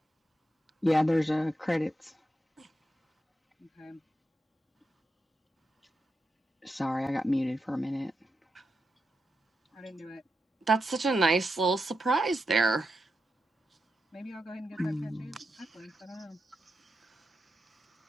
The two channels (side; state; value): both; normal; correlation 0.87